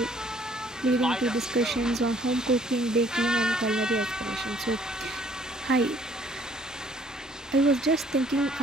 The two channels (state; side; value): normal; both; correlation 0.60